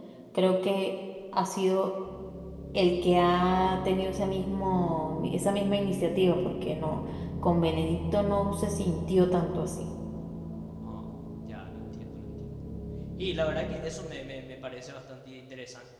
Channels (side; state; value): both; identical; correlation 1.00